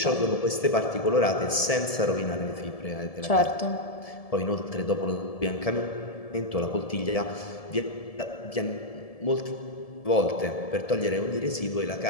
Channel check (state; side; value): late; right; 1.7 ms